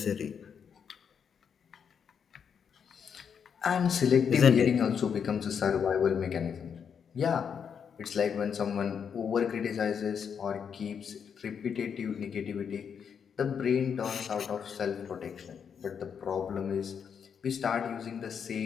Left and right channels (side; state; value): right; quieter; 7.2 dB